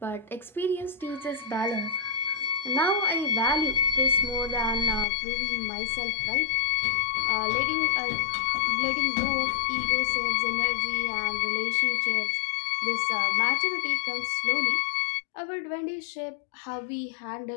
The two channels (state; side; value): drops out; right; at 5.1 s